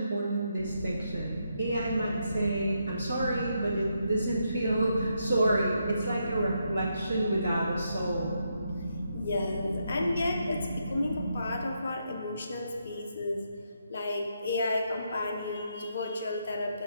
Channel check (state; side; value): inverted; both; correlation -0.80